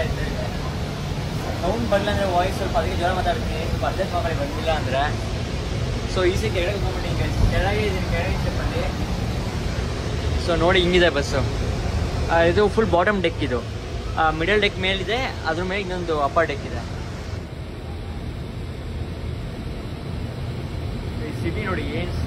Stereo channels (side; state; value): both; identical; correlation 1.00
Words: ಇರ್ತಾರೆ. ಸೌಂಡ್ ಬರಲ್ಲ ಅಂದರೆ ವಾಯ್ಸ್ ಸ್ವಲ್ಪ ಅದಕ್ಕೆ ಜ್ವರ ಮಾತಾಡ್ತೀನಿ, ಸ್ವಲ್ಪ ಅಡ್ಜಸ್ಟ್ ಮಾಡಿ ಬಂದಿಲ್ಲ ಅಂದರೆ. ಸೊ ಈಸಿ ಕೆಳಗೆ ಹೋಗ್ಬಿಟ್ಟು ಕೆಳಗೆ ಇದ್ದೀನಿ, ಕೆಳಗೆ ಸ್ಟೆಪ್ಪಲ್ಲಿ. ಸೊ ನೋಡಿ ಹಿಂಗಿದೆ ಬಸ್ಸು. ಇದು ಫುಲ್ ಬಾಟಮ್ ಡೆಕ್, ಇದು ಮಿಡಲ್ ಡೆಕ್ ಮೇಲಿದೆ, ಅದ್ರ ಮೇಲೆ ಇನ್ನೊಂದು ಅಪ್ಪರ್ ಡೆಕ್ ಇದೆ. ಸಿಟಿ ನೋಡಿ ಏನು